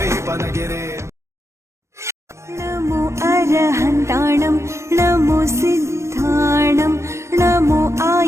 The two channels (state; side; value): late; left; 0.13 ms